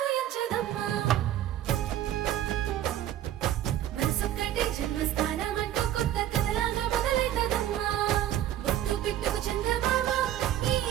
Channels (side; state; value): left; quieter; 12.1 dB